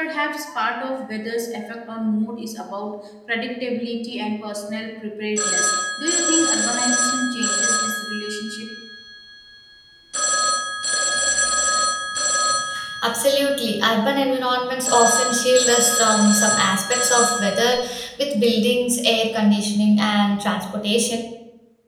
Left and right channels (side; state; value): both; identical; correlation 1.00